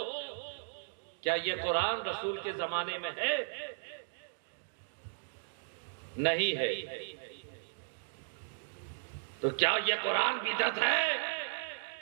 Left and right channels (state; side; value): silent; left; digital silence